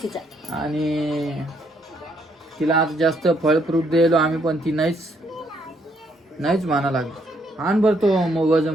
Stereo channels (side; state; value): both; normal; correlation 0.71